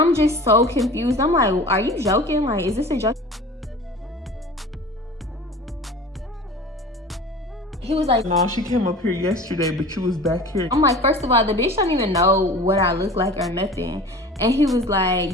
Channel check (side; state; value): both; normal; correlation 0.39